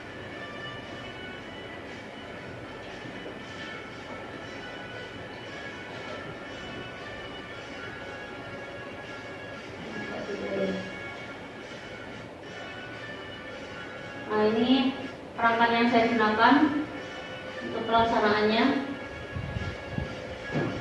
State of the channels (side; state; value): both; identical; correlation 1.00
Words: Nah, ini perangkat yang saya gunakan untuk pelaksanaannya.